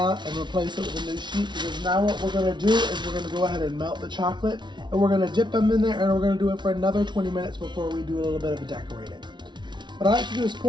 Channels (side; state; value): left; late; 0.22 ms